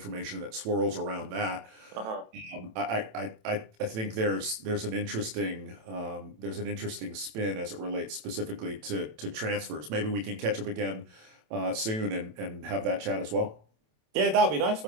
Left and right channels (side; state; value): left; late; 27 ms